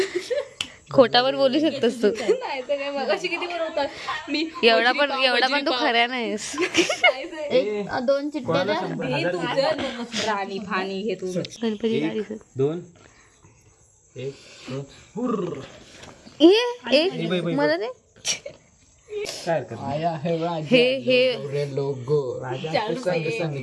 खोटावर बोलू शकतोस तू. नाही तर काय मगाशी किती बोलवतात. मी एवढा पण तू खऱ्या नाहीस. 2 चिट्ट्या द्या. राणी फाणी घे तू. गणपती गाडी 2 1 2 एक मला दे. काय कर हे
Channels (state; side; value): identical; both; correlation 1.00